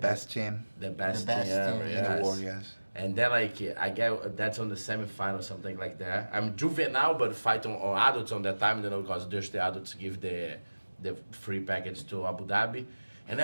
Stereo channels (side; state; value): both; inverted; correlation -1.00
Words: team The best, best thing ever, team in yes. the world, yes. And then like I get that's on the semifinal, something like that. I'm juvenile, but fight on adults on that time, you know, because there's the adults give the free package to Abu Dhabi. And